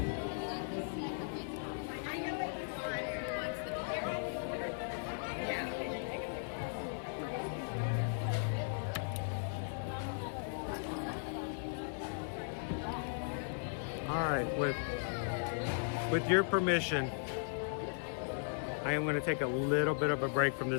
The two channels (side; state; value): right; silent; digital silence